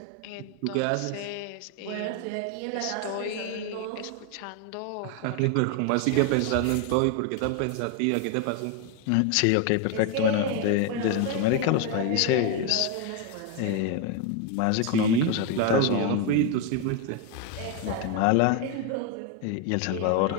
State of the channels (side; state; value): both; different; correlation 0.01